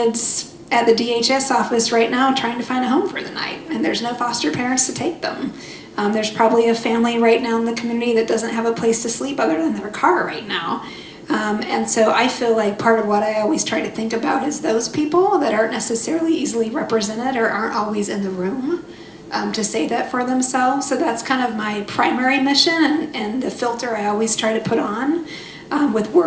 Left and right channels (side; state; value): both; identical; correlation 1.00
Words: at the DHS office right now trying to find a home for the night, and there's no foster parents to take them. There's probably a family right now in the community that doesn't have a place to sleep other than their car right now. And so I feel like part of what I always try to think about is those people that aren't necessarily easily represented or aren't always in the room to say that for themselves. So that's kind of my primary mission and the filter I always try to put on with